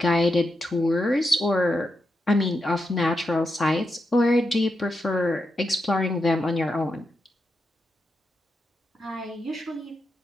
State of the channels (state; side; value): normal; both; correlation 0.86